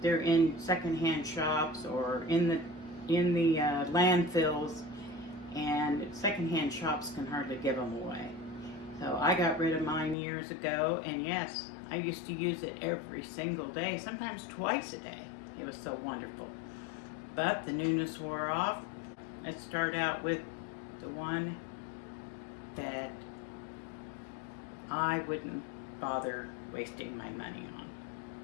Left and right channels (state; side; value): drops out; right; at 10.2 s